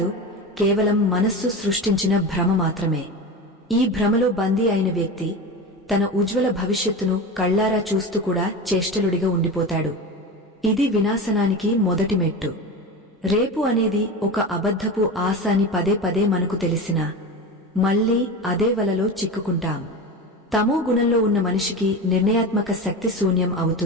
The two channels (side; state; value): both; normal; correlation 0.26